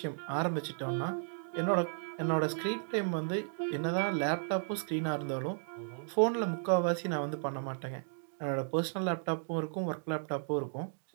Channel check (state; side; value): silent; left; digital silence